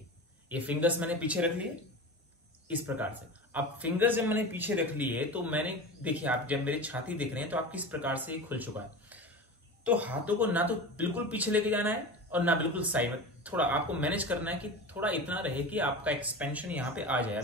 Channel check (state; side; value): normal; both; correlation 0.30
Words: ये फिंगर्स मैंने पीछे रख लिए इस प्रकार से। अब फिंगर्स जब मैंने पीछे रख लिए तो मैंने, देखिए आप जब मेरी छाती देख रहे हैं तो आप किस प्रकार से खुल चुका है। तो हाथों को ना तो बिल्कुल पीछे लेके जाना है और ना बिल्कुल साइड में, थोड़ा आपको मैनेज करना है कि थोड़ा इतना रहे कि आपका एक्सपेंशन यहाँ पे आ जाए।